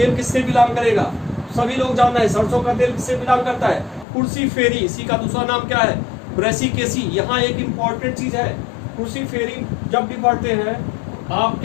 किससे बिलोंग करेगा? सभी लोग जानना है सरसों का तेल किससे बिलोंग करता है? कुर्सी फेरी, इसी का दूसरा नाम क्या है? ब्रेसिकेसी। यहाँ एक इंपॉर्टेंट चीज है, कुर्सी फेरी जब भी पढ़ते हैं आप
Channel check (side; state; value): right; drops out; at 4.0 s